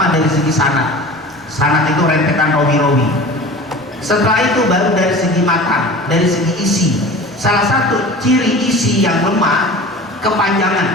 dari segi sanad. Sanad itu rentetan rawi-rawi. Setelah itu baru dari segi matan, dari segi isi. Salah satu ciri isi yang lemah,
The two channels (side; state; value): both; normal; correlation 0.38